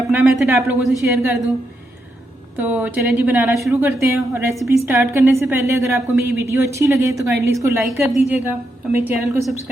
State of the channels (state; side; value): normal; both; correlation 0.82